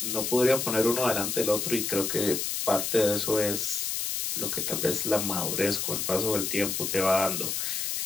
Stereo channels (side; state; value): left; noise; hiss, 1 dB below the sound